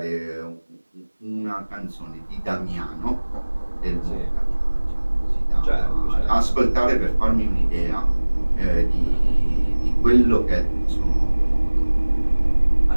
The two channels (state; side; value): inverted; both; correlation -1.00